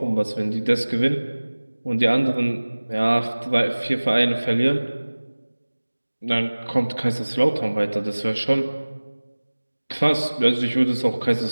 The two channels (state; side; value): inverted; both; correlation -1.00